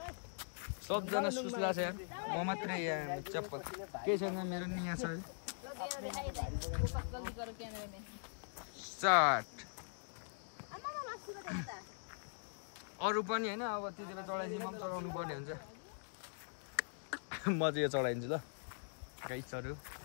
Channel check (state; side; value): silent; right; digital silence